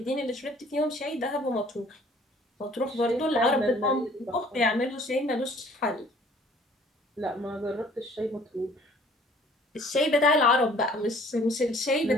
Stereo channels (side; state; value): both; normal; correlation 0.55